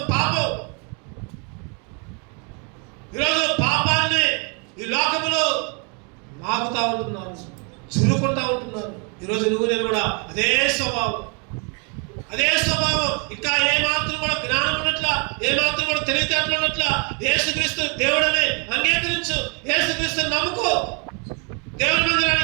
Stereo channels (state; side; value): quieter; left; 35.8 dB